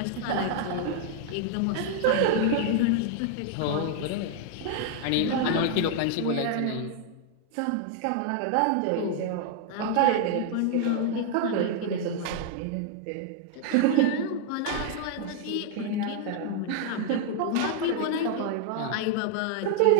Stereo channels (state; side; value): different; both; correlation 0.00